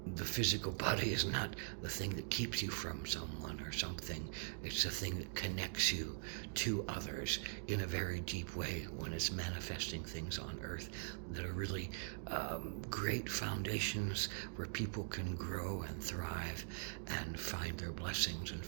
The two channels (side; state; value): left; silent; digital silence